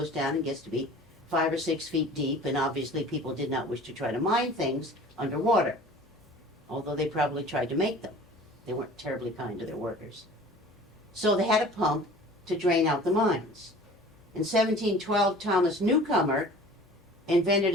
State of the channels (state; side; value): normal; both; correlation 0.44